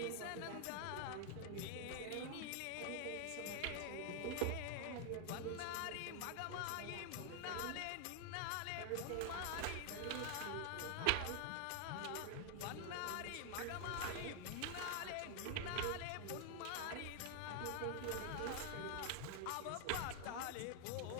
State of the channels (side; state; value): both; different; correlation 0.00